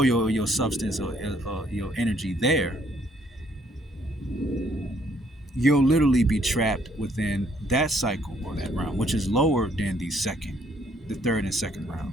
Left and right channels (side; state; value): both; normal; correlation 0.66